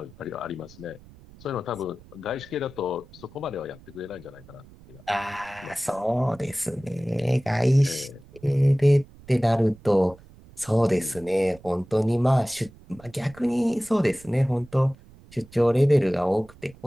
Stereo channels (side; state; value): right; noise; rumble, 23 dB below the sound